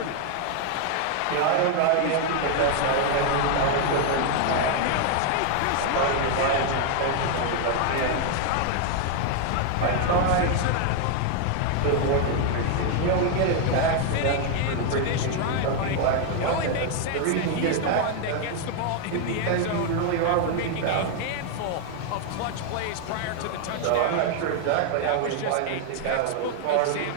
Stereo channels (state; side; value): different; both; correlation 0.00